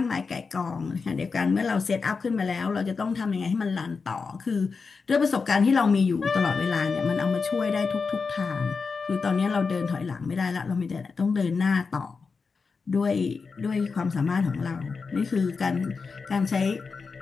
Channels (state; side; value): quieter; right; 4.9 dB